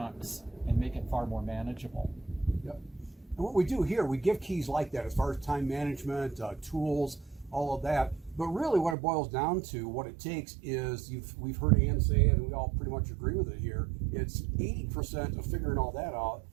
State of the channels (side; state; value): left; drops out; at 9.0 s